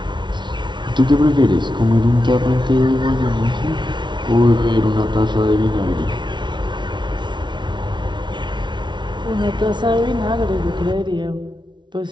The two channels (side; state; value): left; late; 0.23 ms